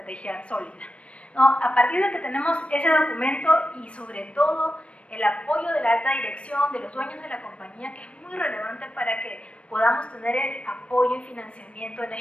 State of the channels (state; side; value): late; right; 0.061 ms